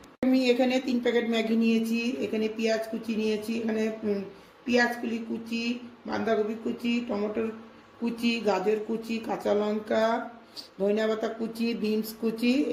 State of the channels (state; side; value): identical; both; correlation 1.00